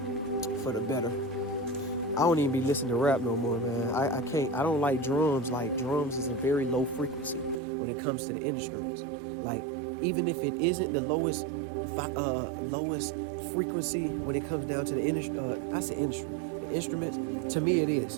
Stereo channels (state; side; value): drops out; left; at 7.6 s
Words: for the better. I don't even be listening to rap no more, man. I can't. I don't like drums. Like, drums is a very low frequency when it comes to the instruments. Like, even if it isn't the lowest frequency when it comes down to the the instruments. To me, it